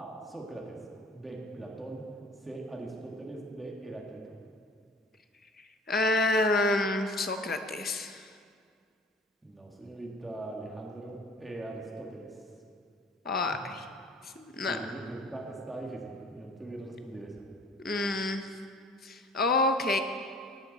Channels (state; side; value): normal; both; correlation 0.48